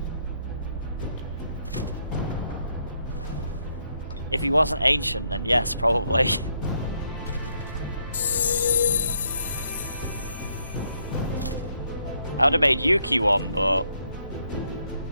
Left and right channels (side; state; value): both; inverted; correlation -0.73